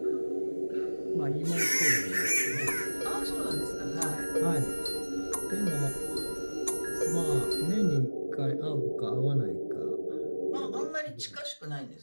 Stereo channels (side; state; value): both; inverted; correlation -1.00